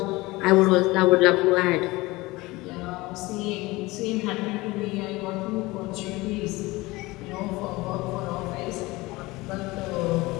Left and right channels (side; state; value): right; quieter; 21.2 dB